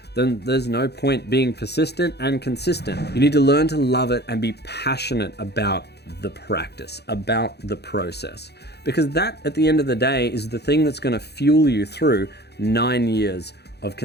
then there's no point being persistent and consistent. You need to learn to love it and be passionate about the practice, about the process. Because that, at the end of the day, is the thing that's gonna fuel you through 9 years of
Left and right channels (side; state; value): right; late; 0.48 ms